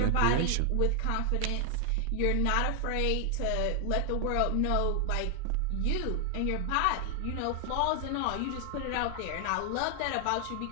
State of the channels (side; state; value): both; different; correlation 0.00